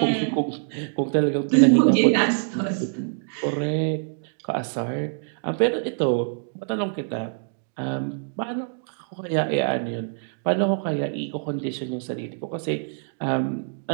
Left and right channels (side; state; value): left; silent; digital silence